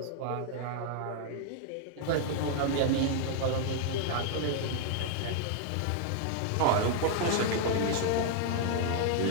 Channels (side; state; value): both; different; correlation 0.00